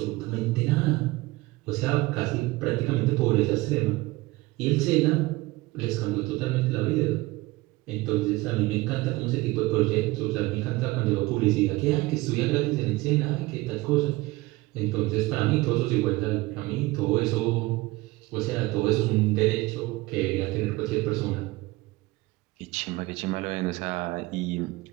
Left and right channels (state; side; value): quieter; left; 20.7 dB